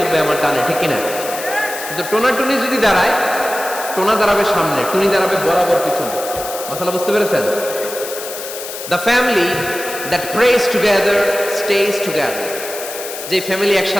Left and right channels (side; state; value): left; noise; hiss, 9 dB below the sound